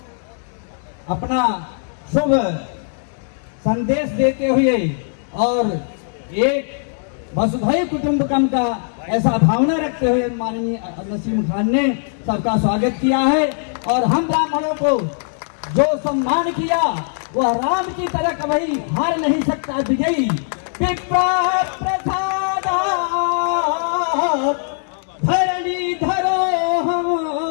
अपना शुभ संदेश देते हुए और एक वसुधैव कुटुंबकम का ऐसा भावना रखते हुए माननीय नसीम खान ने सबका स्वागत किया है। और हम ब्राह्मणों को जो सम्मान किया वह राम की तरह कभी हार नहीं सकता विजयी। प्रसादात् धरणी धरो हम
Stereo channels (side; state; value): right; silent; digital silence